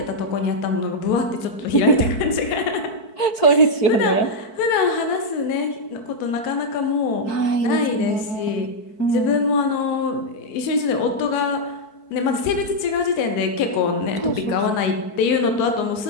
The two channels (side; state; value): right; late; 4.6 ms